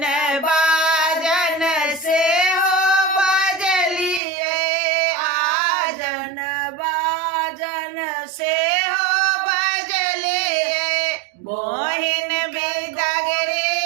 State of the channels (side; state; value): left; drops out; at 4.2 s